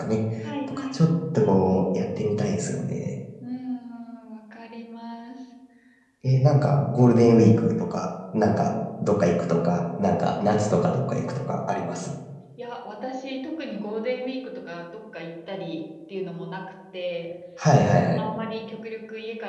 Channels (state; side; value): identical; both; correlation 1.00